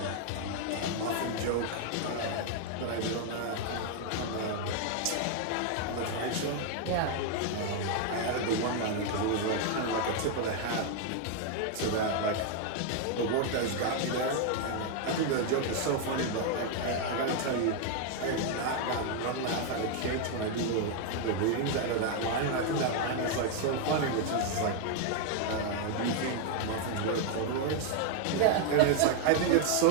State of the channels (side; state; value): both; different; correlation 0.00